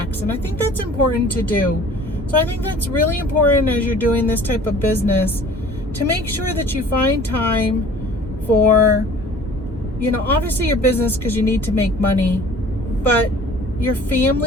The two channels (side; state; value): both; normal; correlation 0.48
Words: And I think that's important to do. So I think that's really important as you're doing this type of business, to make sure that you find time for, obviously your business, because you need to make money, but your